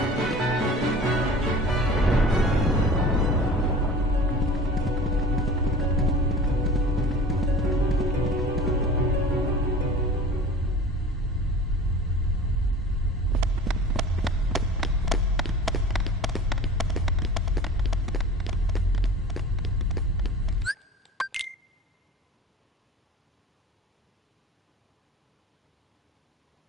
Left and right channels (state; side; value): normal; both; correlation 0.40